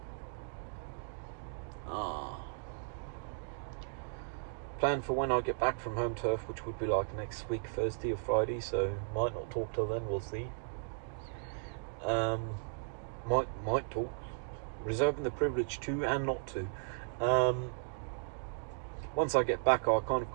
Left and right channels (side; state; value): left; silent; digital silence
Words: Plan for when I get back from home turf, which would be like next week, Thursday or Friday, so might not talk till then, we'll see. Might talk. Reserving the privilege to and not to. Once I get back, I kind of